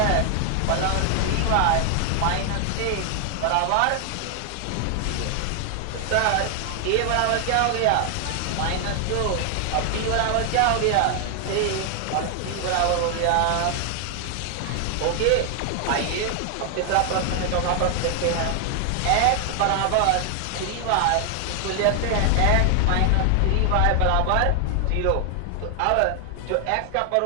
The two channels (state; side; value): different; both; correlation 0.00